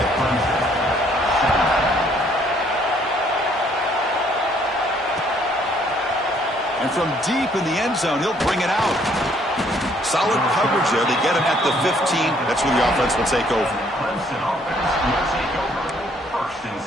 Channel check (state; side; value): normal; both; correlation 0.64